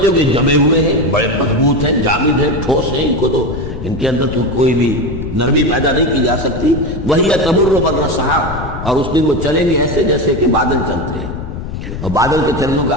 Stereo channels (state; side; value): noise; left; rumble, 7 dB below the sound